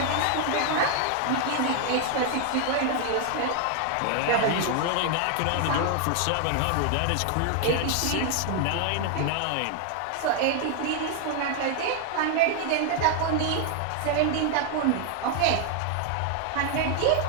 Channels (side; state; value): both; different; correlation 0.00